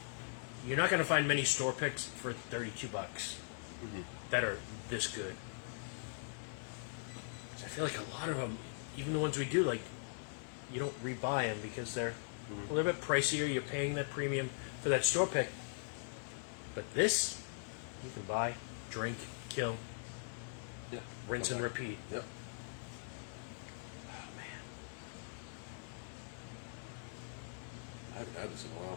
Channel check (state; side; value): silent; right; digital silence